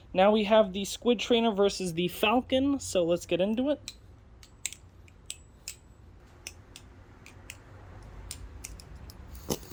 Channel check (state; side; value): identical; both; correlation 1.00